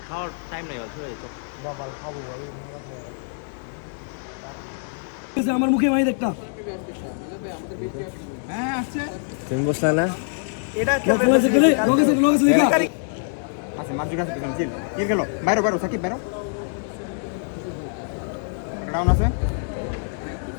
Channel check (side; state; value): right; silent; 62 dB below the other